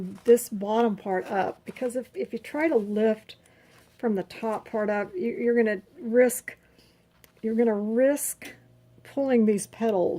this bottom part up, because if you try to lift from the top part up, you're going to risk pulling these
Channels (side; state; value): both; identical; correlation 1.00